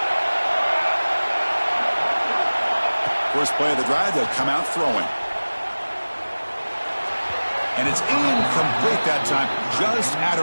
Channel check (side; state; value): both; inverted; correlation -1.00